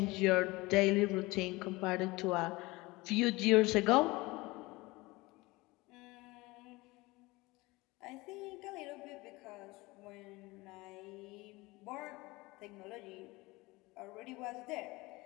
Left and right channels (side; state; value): right; quieter; 22.0 dB